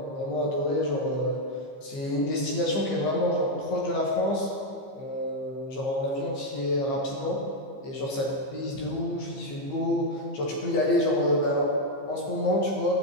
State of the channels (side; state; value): right; late; 15 ms